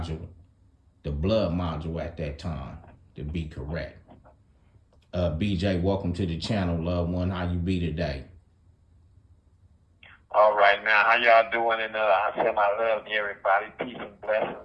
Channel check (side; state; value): both; identical; correlation 1.00